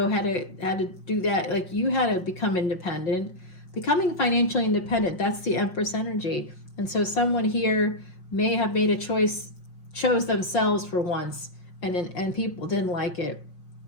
had to do that. Like, you had to become independent. Becoming financially independent, that's the Empress energy. And so someone here may have made a choice, chose themselves for once, and people didn't like it.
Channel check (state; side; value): late; right; 5.6 ms